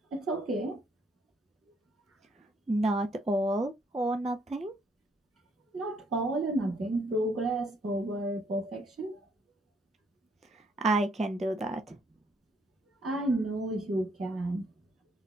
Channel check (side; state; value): both; normal; correlation 0.69